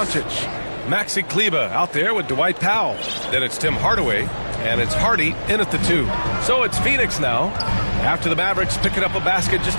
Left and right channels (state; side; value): inverted; both; correlation -1.00